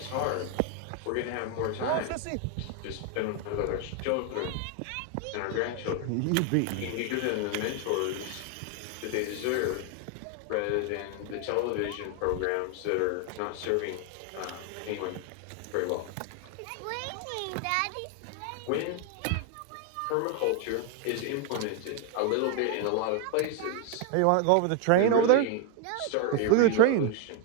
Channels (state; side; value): different; both; correlation 0.01